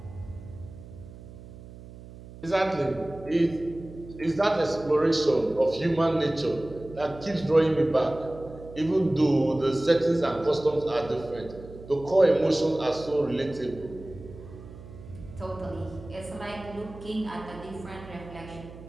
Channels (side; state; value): right; noise; hum, 16 dB below the sound